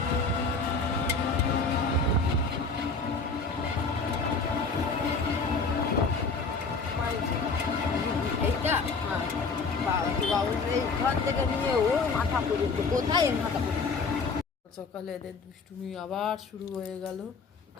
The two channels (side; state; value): right; quieter; 4.3 dB